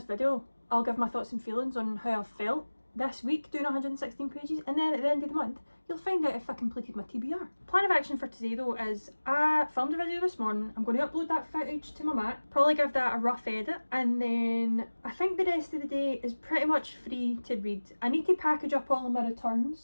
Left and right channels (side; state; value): both; inverted; correlation -1.00